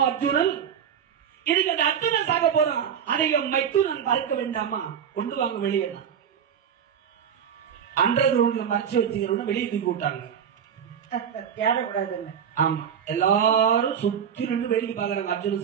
அர்ஜுனன், இதுக்கு அந்த அர்ஜுனன் சாக போறான், அதை மைத்துனன் பார்க்க வேண்டாமா, கொண்டு வாங்க வெளியே. அன்றது மறைச்சு வச்சுக்கிறோம், வெளியே தூக்கி விட்டாங்க. ஆமா, எல்லாரும் சுத்தி நின்று வேடிக்கை பாக்குறாங்க.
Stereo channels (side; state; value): left; quieter; 8.1 dB